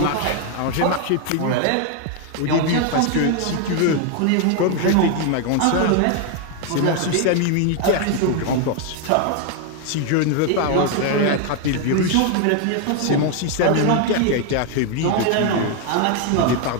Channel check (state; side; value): different; both; correlation 0.01